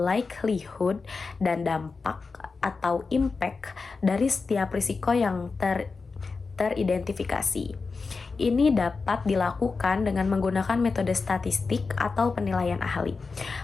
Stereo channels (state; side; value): quieter; right; 4.4 dB